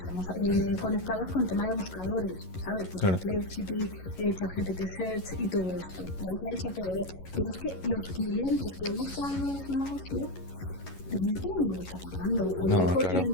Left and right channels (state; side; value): late; right; 11 ms